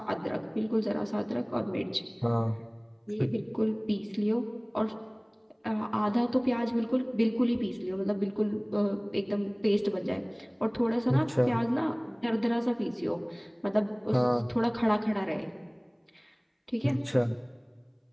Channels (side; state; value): both; identical; correlation 1.00